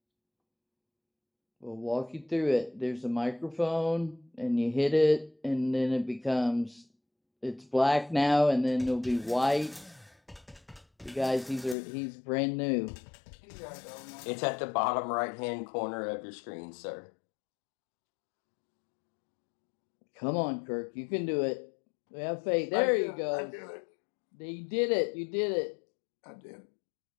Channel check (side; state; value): right; drops out; at 11.8 s